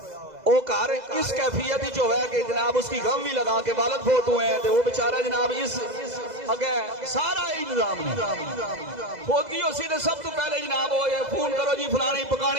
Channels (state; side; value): late; left; 2.0 ms